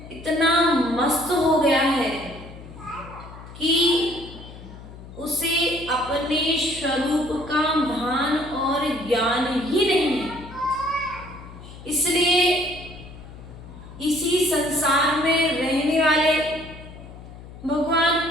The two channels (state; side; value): noise; left; hum, 16 dB below the sound